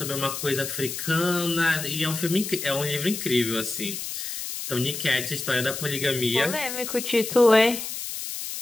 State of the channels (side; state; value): left; noise; hiss, 6 dB below the sound